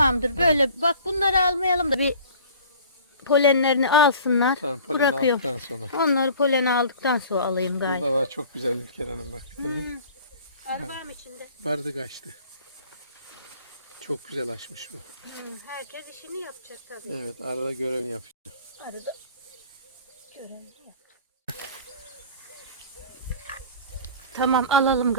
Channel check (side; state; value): both; inverted; correlation -0.46